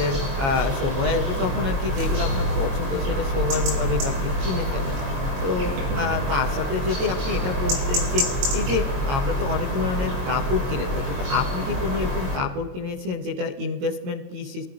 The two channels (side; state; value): left; late; 22 ms